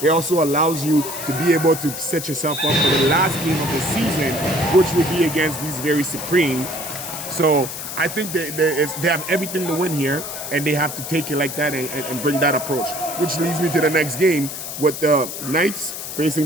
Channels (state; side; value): noise; left; hiss, 7 dB below the sound